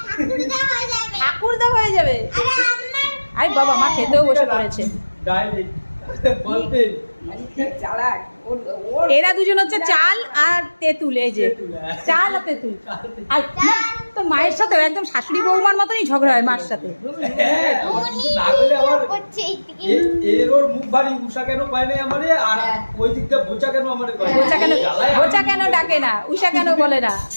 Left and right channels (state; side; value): inverted; both; correlation -1.00